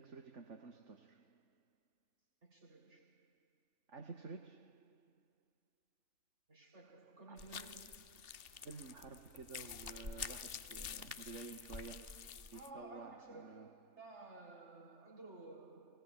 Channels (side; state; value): left; late; 3.4 ms